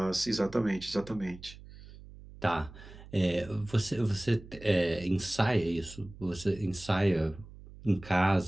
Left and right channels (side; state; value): right; noise; hum, 18 dB below the sound